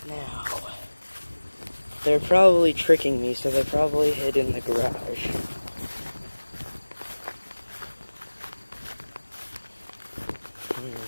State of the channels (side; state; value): both; inverted; correlation -1.00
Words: Now, they're probably tricking me, so they probably hid in the garage.